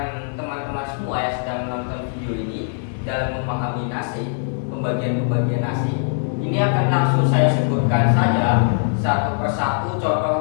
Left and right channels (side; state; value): right; silent; digital silence